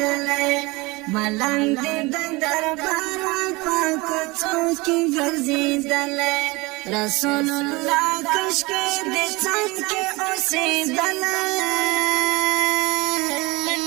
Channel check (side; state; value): left; quieter; 23.8 dB